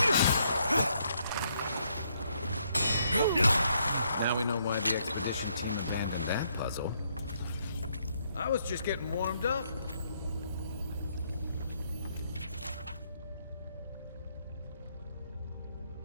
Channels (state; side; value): inverted; both; correlation -0.72